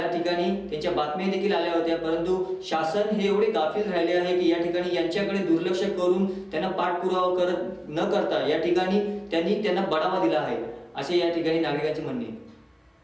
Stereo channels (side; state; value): both; identical; correlation 1.00